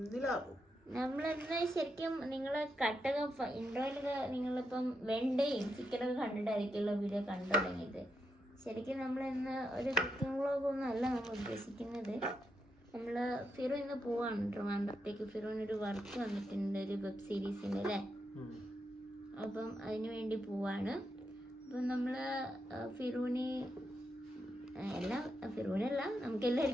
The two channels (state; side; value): normal; both; correlation 0.83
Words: നിലാവും. നമ്മളെന്താ ശരിക്കും നിങ്ങളെ കട്ടൊക്കെ ഇൻട്രോയിലൊക്കെ നിങ്ങളിപ്പം വെണ്ടയും ചിക്കനൊക്കെ കണ്ടിട്ടായിരിക്കുമല്ലോ വീഡിയോ കണ്ടു തുടങ്ങിയത്. ശരിക്കും നമ്മളിന്ന് ഒരു കുക്കിംഗ് വ്ളോഗൊന്നും അല്ല നമ്മൾ ഉദ്ദേശിക്കുന്നത്. നമ്മൾ ഫിറു ഇന്ന് പോവാണ് ട്രിവാൻഡ്രത്തേക്ക്. ഫിറുവിനൊരു വർക്ക് വന്നിട്ടുണ്ട്, ഒരു വെബ് സീരീസിൻ്റെ അല്ലേ. അപ്പം അതിന് വേണ്ടി പോവാണ്. അപ്പം നമ്മൾ ഫിറൂനല്ല നമുക്ക്